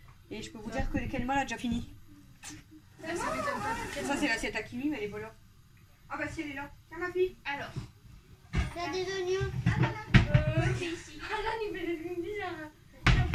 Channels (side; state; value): both; identical; correlation 1.00